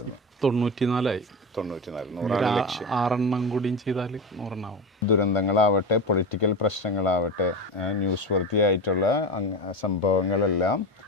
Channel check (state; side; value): normal; both; correlation 0.22